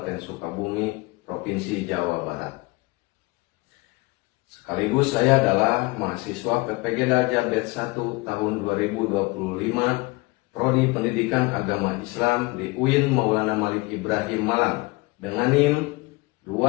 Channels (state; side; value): quieter; right; 24.3 dB